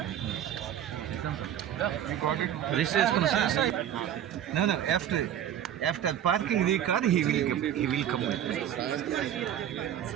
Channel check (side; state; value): left; quieter; 10.5 dB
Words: No, after parking the car, he will come with me.